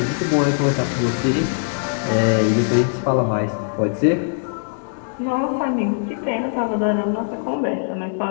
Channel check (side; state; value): right; silent; 65 dB below the other